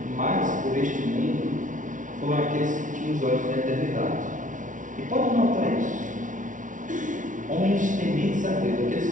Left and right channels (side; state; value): left; late; 0.37 ms